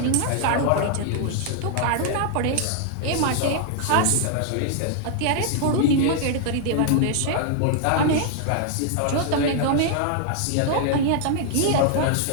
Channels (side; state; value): both; different; correlation 0.00